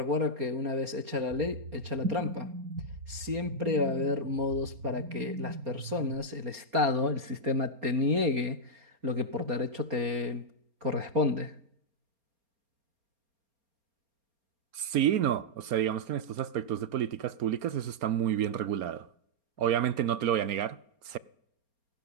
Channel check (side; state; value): left; late; 4.3 ms